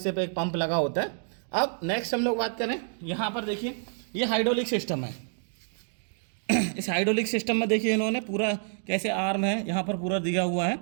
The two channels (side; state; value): left; silent; 58 dB below the other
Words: पे एक पंप लगा होता है। अब नेक्स्ट हम लोग बात करें, यहाँ पर देखिए ये हाइड्रोलिक सिस्टम है। इस हाइड्रोलिक सिस्टम में देखिए इन्होंने पूरा कैसे आर्म है यहाँ पर पूरा दिया हुआ है,